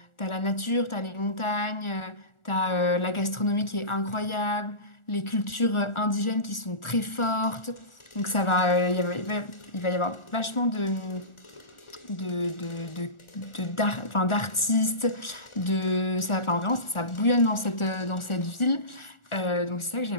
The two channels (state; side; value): late; right; 1.4 ms